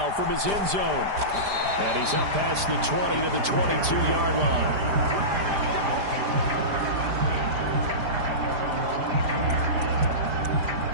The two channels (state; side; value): late; left; 5.0 ms